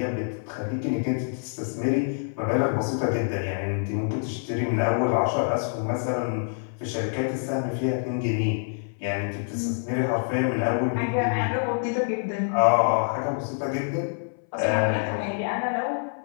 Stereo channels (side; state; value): right; silent; 61 dB below the other